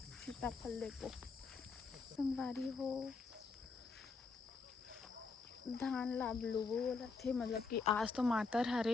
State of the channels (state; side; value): quieter; right; 4.5 dB